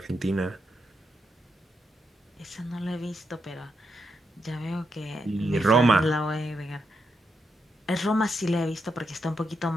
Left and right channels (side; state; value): both; normal; correlation 0.83